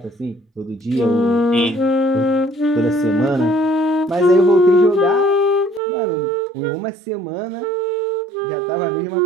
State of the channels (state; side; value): drops out; left; at 5.8 s